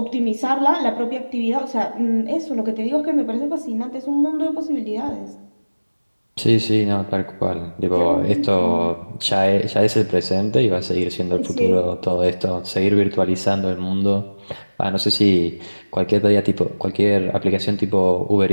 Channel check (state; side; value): inverted; both; correlation -1.00